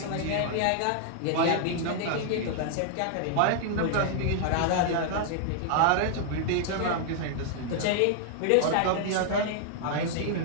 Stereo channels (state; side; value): different; both; correlation -0.01